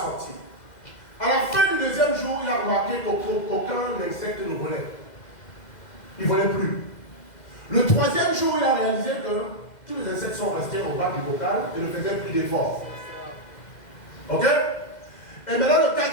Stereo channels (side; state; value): right; late; 2.0 ms